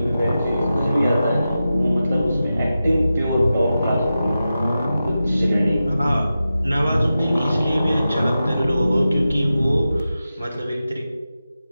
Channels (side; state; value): both; inverted; correlation -0.92